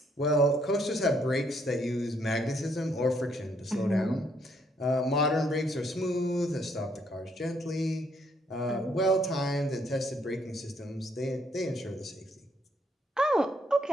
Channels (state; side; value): normal; both; correlation 0.70